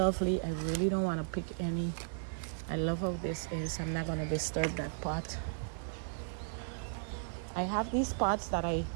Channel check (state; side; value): silent; left; digital silence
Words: I really don't want to pick any. I love how this is. I'm not going to disturb that pot. I have these pots that I